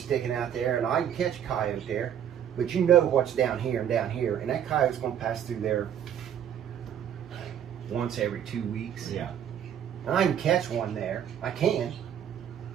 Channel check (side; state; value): left; quieter; 9.4 dB